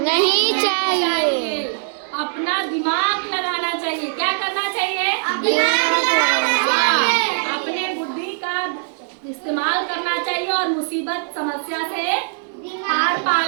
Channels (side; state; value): left; silent; digital silence